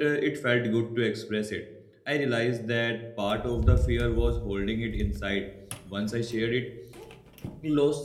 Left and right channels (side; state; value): both; identical; correlation 1.00